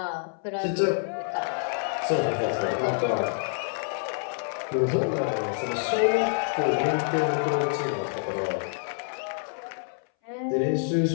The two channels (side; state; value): right; silent; 60 dB below the other